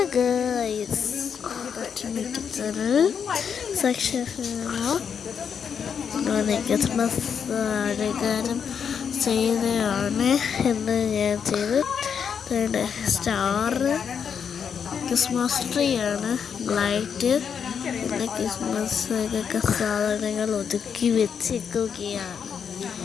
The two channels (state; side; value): quieter; right; 7.1 dB